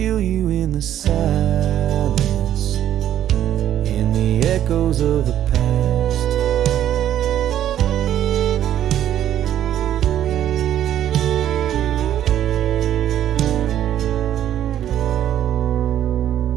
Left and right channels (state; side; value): quieter; left; 11.3 dB